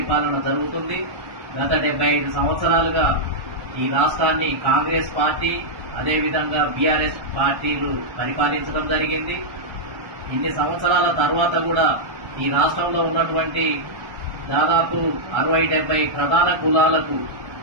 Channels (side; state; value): left; late; 1.2 ms